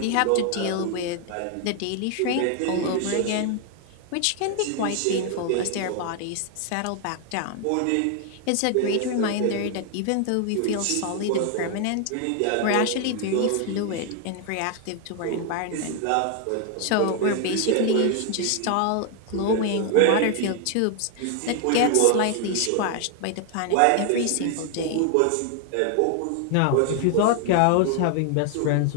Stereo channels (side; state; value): both; different; correlation 0.00